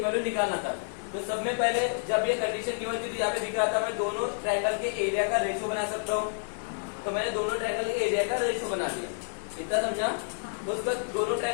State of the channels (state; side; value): silent; right; 58 dB below the other